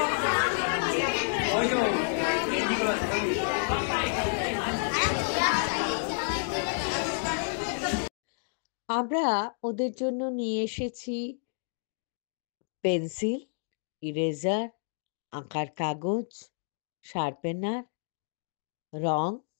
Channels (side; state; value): right; silent; digital silence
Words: আমরা ওদের জন্য নিয়ে এসেছি পেন্সিল, ইরেজার, আঁকার কাগজ, শার্পেনার, রং,